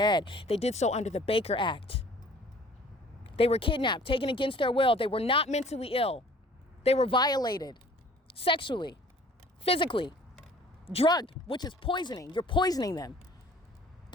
They did so under the Baker Act. They were kidnapped, taken against their will. They were not mentally ill. They were violated sexually, physically, drugged, which is poisoning. You're poisoning them.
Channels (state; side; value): normal; both; correlation 0.52